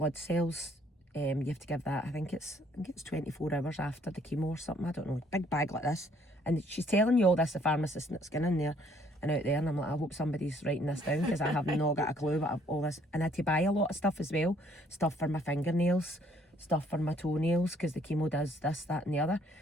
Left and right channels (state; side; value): normal; both; correlation 0.63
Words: cells. You have to give that, I think it's 24 hours after the chemo or something, I don't know, big bag like this. And she's telling you all this, the pharmacist that's going in there and out there, and I'm like, I hope somebody's writing this down, because I have not got a clue about all this. And I had to buy a lot of stuff as well, stuff for my fingernails, stuff for my toenails, because the chemo does this, that and the other.